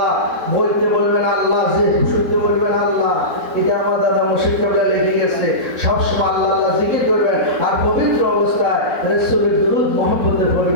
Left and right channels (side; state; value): left; late; 4.1 ms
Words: বলতে বলবেন আল্লাহ, যে শুনতে বলবেন আল্লাহ। এটা আমার দাদা মুর্শিদ কেবলা লিখে গেছে। সবসময় আল্লাহ আল্লাহ জিকির করবেন আর পবিত্র অবস্থায় রাসূলের দুরূদ মহব্বতে